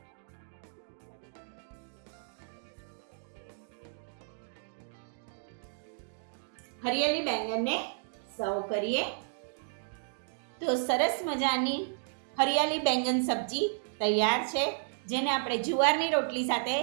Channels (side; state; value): left; silent; digital silence